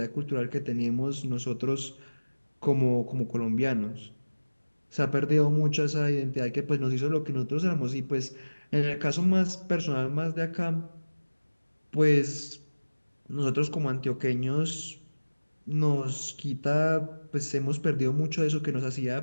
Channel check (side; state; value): both; inverted; correlation -1.00